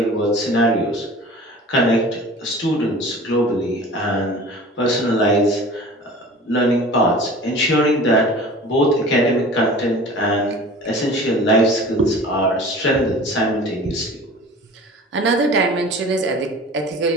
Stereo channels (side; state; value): both; normal; correlation 0.41